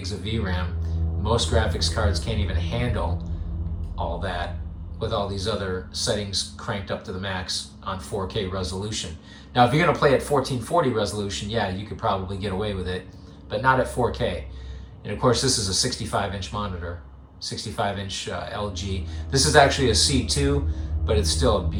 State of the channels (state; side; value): identical; both; correlation 1.00